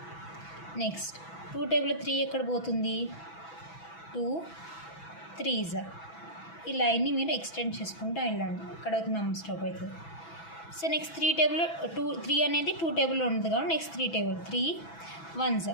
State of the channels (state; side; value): late; right; 6.1 ms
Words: నెక్స్ట్ 2 టేబుల్లో 3 ఎక్కడ పోతుంది, 2 3. ఈ లైన్ని మీరు ఎక్స్టెండ్ చేసుకుంటూ వెళ్ళండి. ఇక్కడ ఒక నెంబర్ స్టాప్ అవుతుంది. సో నెక్స్ట్ 3 టేబుల్లో 3 అనేది 2 టేబుల్లో ఉంటుంది కాబట్టి నెక్స్ట్ 3 టేబుల్ 3 1s.